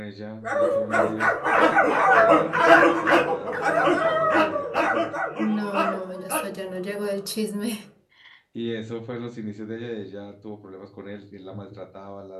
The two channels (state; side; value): identical; both; correlation 1.00